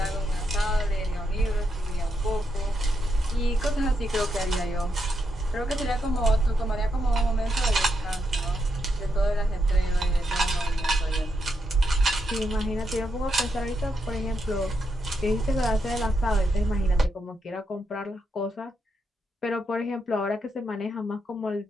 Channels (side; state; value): both; normal; correlation 0.81